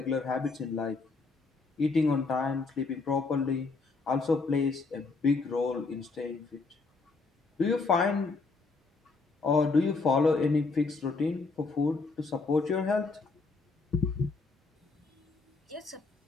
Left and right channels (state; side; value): quieter; right; 4.0 dB